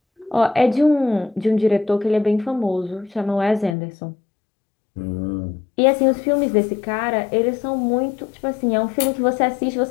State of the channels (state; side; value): drops out; right; at 3.8 s